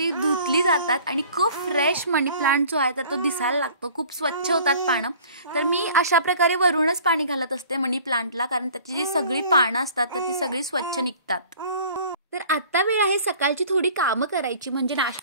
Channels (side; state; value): both; inverted; correlation -0.49